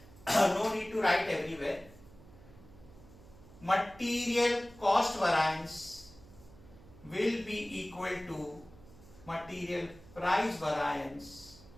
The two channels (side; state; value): right; noise; hum, 22 dB below the sound